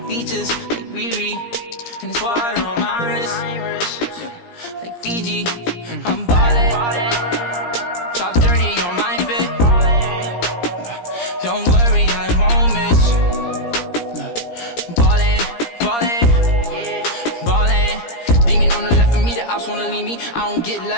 features like Riri. And it's water on my wrist, like Fiji. I'm ballin'. Top 30 on my fit. Don't worry, I won't miss. Ballin'. Demon on the left of me, the ops wanna leave me. I don't get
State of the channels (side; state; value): right; late; 17 ms